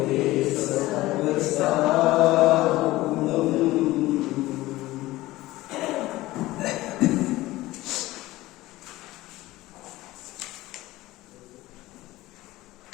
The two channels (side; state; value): right; quieter; 17.9 dB